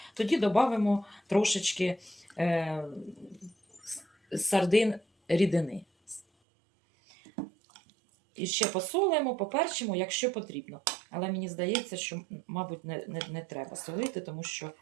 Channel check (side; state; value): left; drops out; at 6.2 s